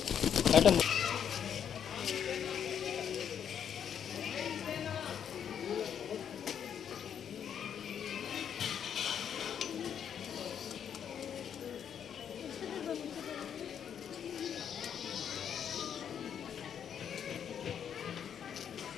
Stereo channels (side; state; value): right; quieter; 8.5 dB